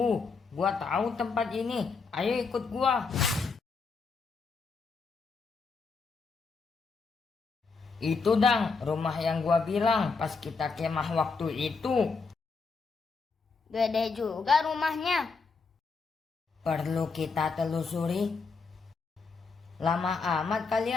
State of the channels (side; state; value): right; quieter; 4.7 dB